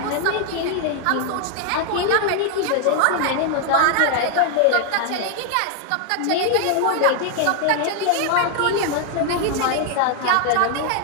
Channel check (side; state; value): both; different; correlation 0.00